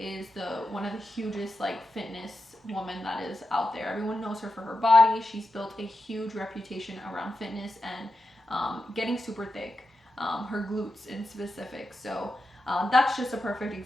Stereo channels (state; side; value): normal; both; correlation 0.89